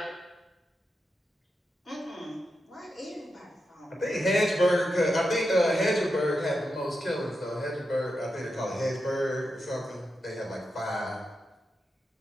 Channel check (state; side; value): normal; both; correlation 0.88